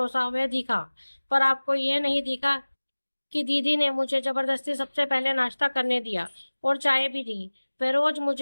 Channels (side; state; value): both; inverted; correlation -1.00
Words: वह दिखा, पर आपको यह नहीं दिखा कि दीदी ने मुझे जबरदस्ती सबसे पहले नाश्ता करने दिया और चाय भी दी। वे रोज